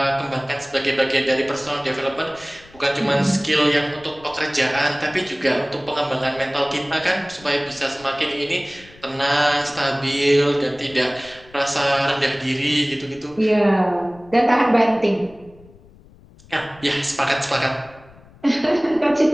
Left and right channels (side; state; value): left; noise; rumble, 24 dB below the sound